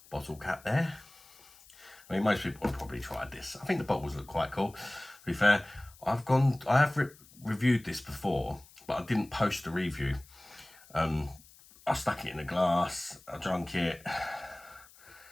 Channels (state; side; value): noise; left; hiss, 24 dB below the sound